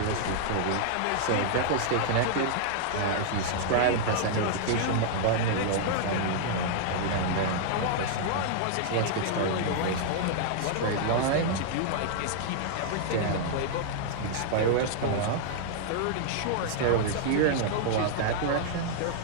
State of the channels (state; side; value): different; both; correlation -0.01